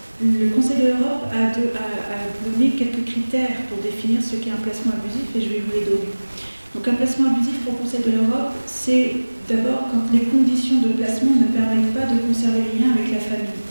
le Conseil de l'Europe a donné quelques critères pour définir ce qu'est un placement abusif, et je vais vous les donner. Donc un placement abusif pour le Conseil de l'Europe, c'est d'abord quand les conditions de placement ne permettent pas de conserver les liens avec la famille,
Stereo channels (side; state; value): both; inverted; correlation -1.00